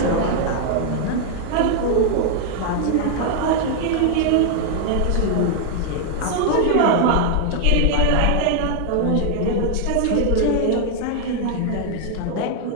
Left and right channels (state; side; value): different; both; correlation 0.00